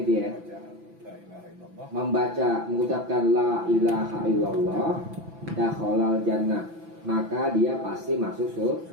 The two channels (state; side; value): late; left; 6.0 ms